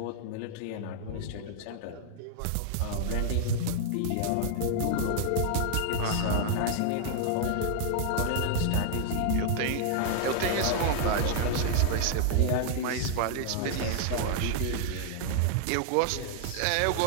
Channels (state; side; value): different; both; correlation -0.01